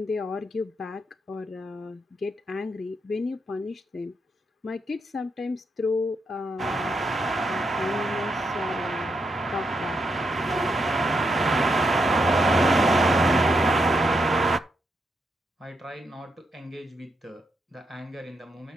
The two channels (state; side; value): normal; both; correlation 0.81